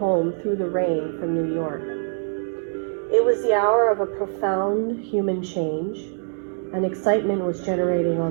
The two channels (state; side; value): silent; left; digital silence